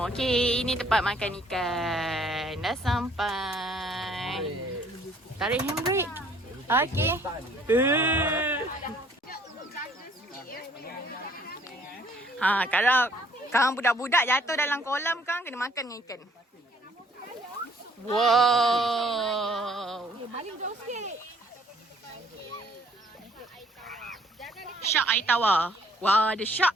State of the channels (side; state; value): both; normal; correlation 0.61